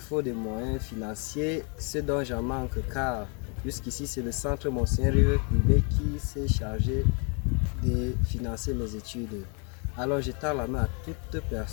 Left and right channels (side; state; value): right; quieter; 35.9 dB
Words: des moyens financiers, ce dont j'en manque car jusqu'ici c'est le centre Monseigneur Yves Plumet qui s'est chargé de financer mes études. Alors je tends la main à toute